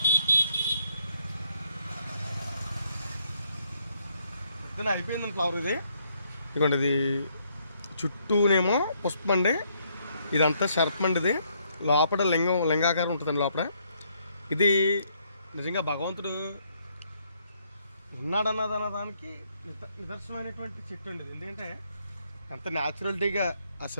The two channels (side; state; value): both; inverted; correlation -0.71